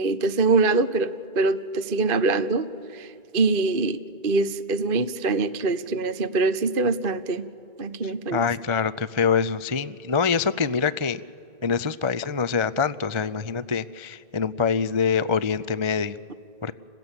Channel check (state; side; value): late; left; 2.5 ms